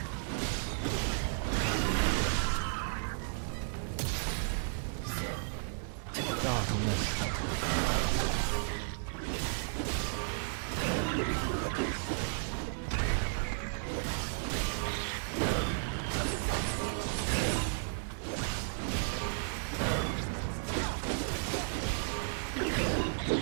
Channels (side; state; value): left; silent; digital silence